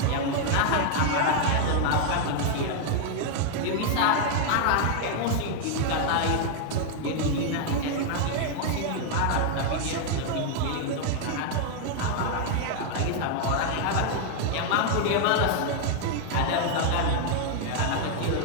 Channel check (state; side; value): different; both; correlation 0.00